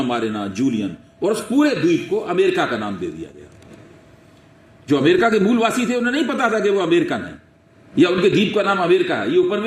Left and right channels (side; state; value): both; identical; correlation 1.00